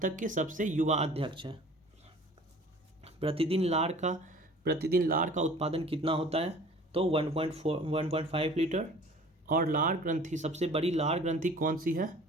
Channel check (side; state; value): both; normal; correlation 0.47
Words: तक के सबसे युवा अध्यक्ष हैं। प्रतिदिन लार का उत्पादन कितना होता है? तो 1.5 लीटर। और लार ग्रंथि, सबसे बड़ी लार ग्रंथि कौन सी है?